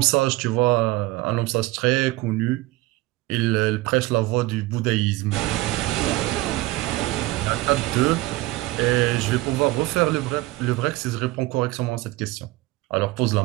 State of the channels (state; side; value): quieter; left; 19.5 dB